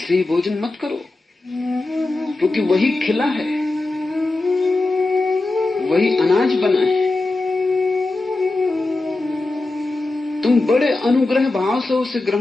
ही भोजन मत करो, क्योंकि वही खिला है, वही अनाज बना है। तुम बड़े अनुग्रह भाव से उसे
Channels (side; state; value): right; quieter; 3.1 dB